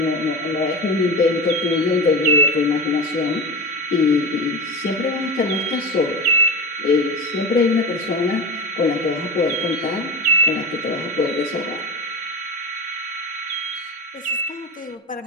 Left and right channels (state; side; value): normal; both; correlation 0.26